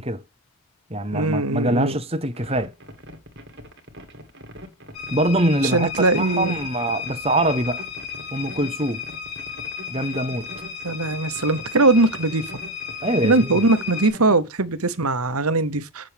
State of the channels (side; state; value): both; normal; correlation 0.13